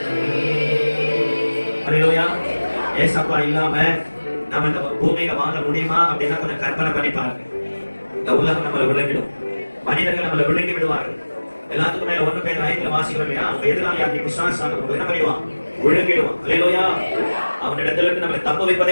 ஏசப்பா இல்லாம நம்ம இந்த பூமியில வாழ முடியுமா அப்படின்னா கொஞ்சம் கற்பனை பண்ணி பாருங்க. இந்த உலகம் நம்மளை விளங்கிடும். மனிதர்கள் நம்மளை விழுங்கி விடுவார்கள். எல்லாத்துக்கும் மேல 1 Peter 5 வாசிக்கிறோம் இல்லையா? அவங்க எதிராளியாகிய பிசாசானவன் நம்ம என்ன பண்ணிடுவான்? விழுங்கிடுவான். அல்லேலூயா. அவனிடத்துல இருந்து நம்மளை தப்ப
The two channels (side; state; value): both; inverted; correlation -1.00